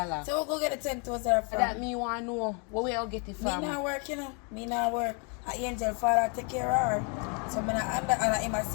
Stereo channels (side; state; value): right; quieter; 35.9 dB